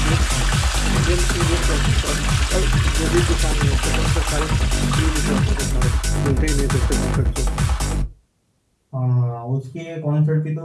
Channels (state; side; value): identical; both; correlation 1.00